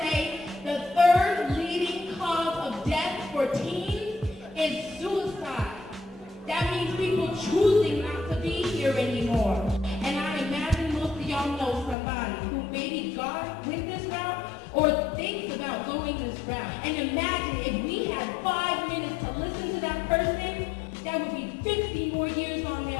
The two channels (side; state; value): right; drops out; at 12.0 s